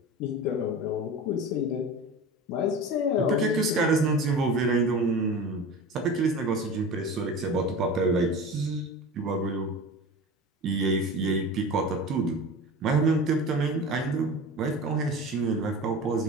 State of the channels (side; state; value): both; normal; correlation 0.33